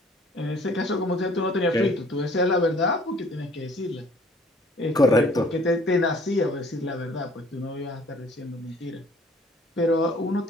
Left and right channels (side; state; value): both; normal; correlation 0.55